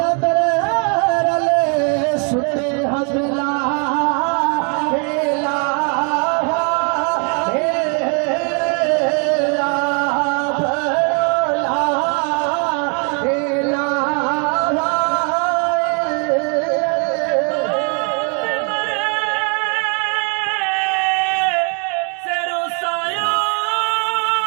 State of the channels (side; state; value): left; quieter; 36.6 dB